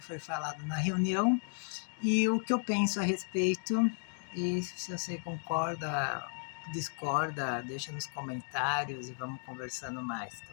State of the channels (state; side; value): silent; right; 55 dB below the other